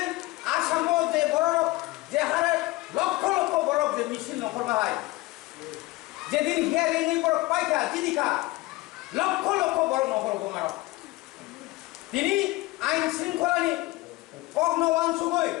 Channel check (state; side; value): quieter; right; 20.9 dB